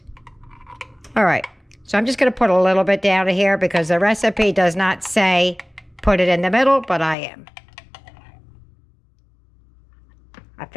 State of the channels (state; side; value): drops out; right; at 7.2 s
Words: All right. So I'm just going to put a little bit down here because the recipe does not say put it in the middle, but I am. I